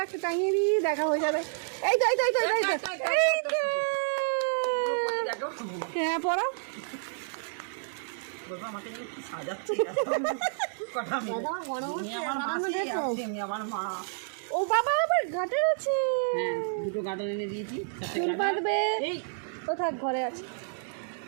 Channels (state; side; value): silent; left; digital silence